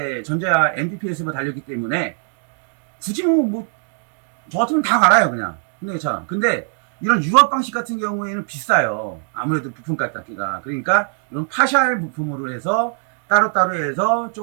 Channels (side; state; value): left; silent; 55 dB below the other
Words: 전자 NDPS가 달렸기 때문에 굳이 저 같으면 다 갈아요 그냥 현대기아 차. 근데 이런 유압 방식 같은 경우에는 비싸요. 아무래도 부품 값기가. 그러니까 이런 파샬 부품으로 해서 따로따로 해서